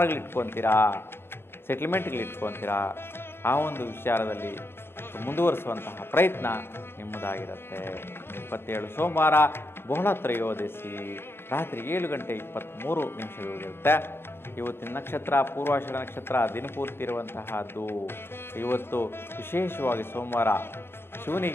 ಇಟ್ಕೊತೀರಾ, ಸೆಟ್ಲ್ಮೆಂಟ್ಗಳು ಇಟ್ಕೊತೀರಾ. ಆ ಒಂದು ವಿಚಾರದಲ್ಲಿ ಮುಂದುವರಿಸುವಂತಹ ಪ್ರಯತ್ನ ನಿಮ್ಮದಾಗಿರುತ್ತೆ. 27 ಸೋಮವಾರ ಬಹುಳ ತ್ರಯೋದಶಿ ರಾತ್ರಿ 7 ಗಂಟೆ 23 ನಿಮಿಷದವರೆಗಿರುತ್ತೆ. ಇವತ್ತಿನ ನಕ್ಷತ್ರ ಪೂರ್ವಾಷಾಢ ನಕ್ಷತ್ರ ದಿನಪೂರ್ತಿ ಇರುವಂತಹದ್ದು. ಇವತ್ತು ವಿಶೇಷವಾಗಿ ಸೋಮವಾರ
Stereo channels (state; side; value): late; right; 0.11 ms